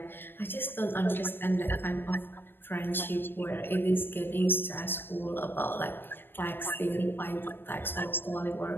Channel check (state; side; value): late; right; 0.098 ms